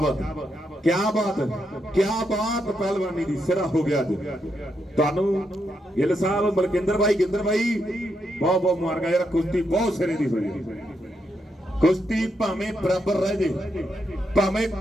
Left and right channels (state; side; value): normal; both; correlation 0.81